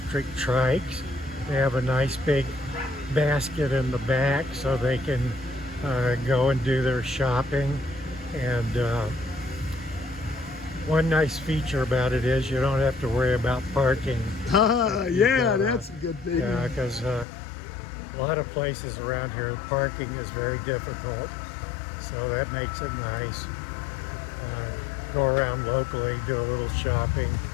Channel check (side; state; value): right; drops out; at 17.2 s